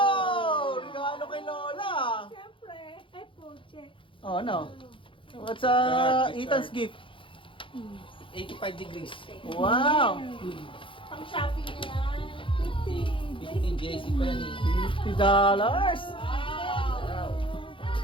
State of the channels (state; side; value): late; right; 0.25 ms